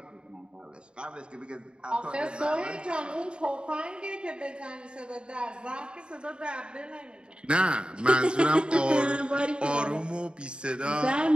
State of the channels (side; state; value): left; late; 0.052 ms